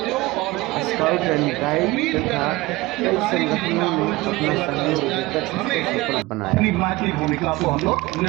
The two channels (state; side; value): quieter; left; 20.5 dB